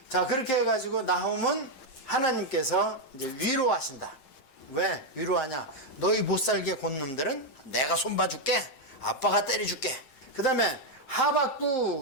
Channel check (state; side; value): late; right; 7.5 ms